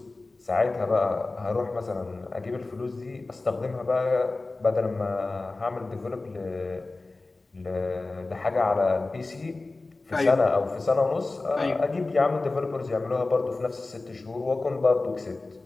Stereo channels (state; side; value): quieter; right; 3.3 dB